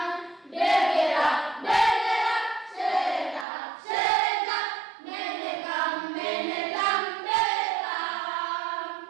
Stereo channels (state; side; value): drops out; left; at 3.5 s